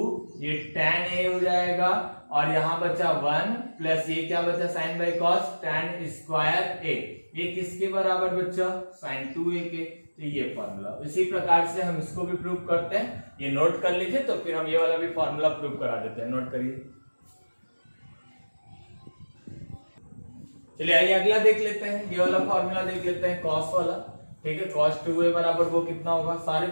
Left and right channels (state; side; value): inverted; both; correlation -1.00